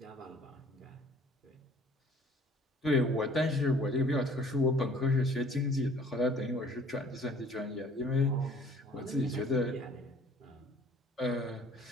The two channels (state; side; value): normal; both; correlation 0.54